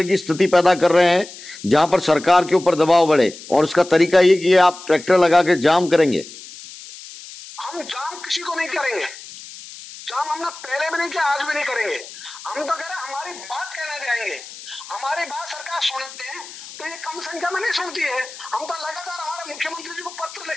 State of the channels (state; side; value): noise; left; hiss, 15 dB below the sound